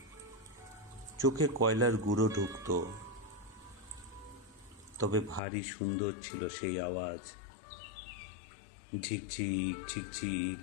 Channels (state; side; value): drops out; right; at 5.4 s